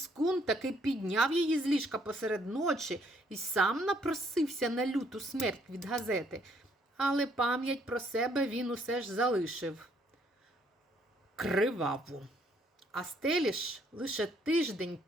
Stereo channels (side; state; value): both; normal; correlation 0.68